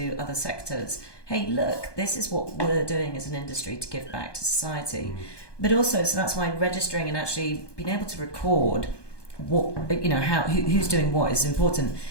other sectors, hey, look, this is what we're doing as an industry to give back to society. But also, so that's why registering and actually being able to record what who's doing what is important.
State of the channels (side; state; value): right; late; 1.2 ms